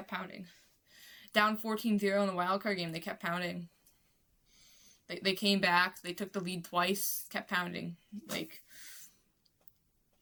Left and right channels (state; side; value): identical; both; correlation 1.00